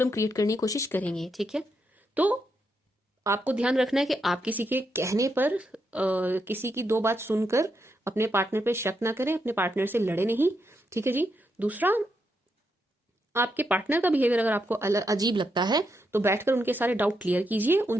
क्रिएट करने की कोशिश करेंगे, ठीक है। तो आपको ध्यान रखना है कि आप किसी के कहने पर किसी की दो बात सुनकर अपने पार्टनर पे शक ना करें, अपने पार्टनर से लड़े नहीं, ठीक है जी। दूसरा, आपके पार्टनर का बिहेवियर अगर आपको अजीब लगता है तो बैठकर उनके सारे डाउट क्लियर कीजिए,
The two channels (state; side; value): normal; both; correlation 0.82